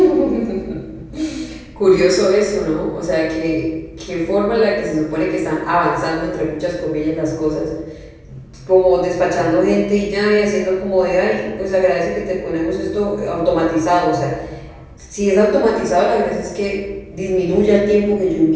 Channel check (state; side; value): identical; both; correlation 1.00